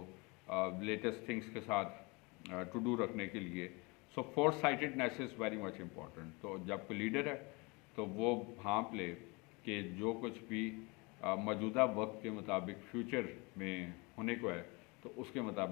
لیٹسٹ تھنگس کے ساتھ ٹو ڈو رکھنے کے لیے۔ So foresightedness is very much important. تو جب کوئی لیڈر ہے تو وہ بھانپ لے کہ جو کچھ بھی موجودہ وقت کے مطابق فیوچر میں ہونے کو ہے تو اس کے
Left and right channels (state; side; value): quieter; right; 27.5 dB